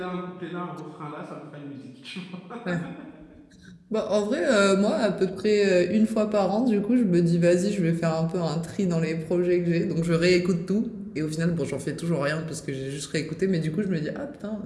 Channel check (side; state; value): both; identical; correlation 1.00